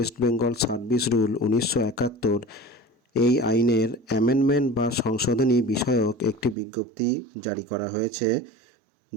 বেঙ্গল সার্ভিস রুল 1971 এই আইনের অ্যামেন্ডমেন্ট বা সংশোধনী বিষয়ক একটি বিজ্ঞপ্তি জারি করা হয়েছে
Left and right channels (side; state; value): left; drops out; at 6.6 s